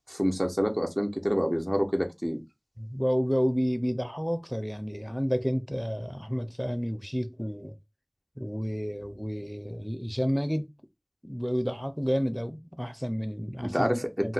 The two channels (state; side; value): identical; both; correlation 1.00